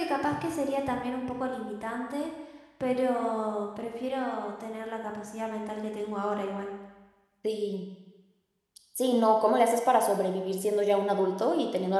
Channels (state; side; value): identical; both; correlation 1.00